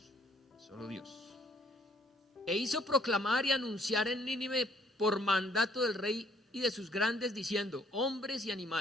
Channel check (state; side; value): normal; both; correlation 0.64